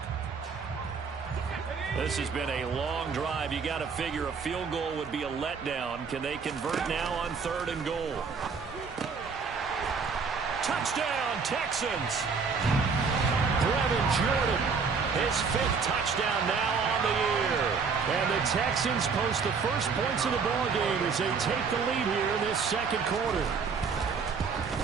This has been a long drive. You got to figure a field goal would be a letdown. Can they convert now on 3rd and goal? Touchdown, Texans. Brevin Jordan, his 5th touchdown now on the year. And the Texans post the first points of the ball game as they take the lead here in this 2nd quarter.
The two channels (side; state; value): left; quieter; 5.4 dB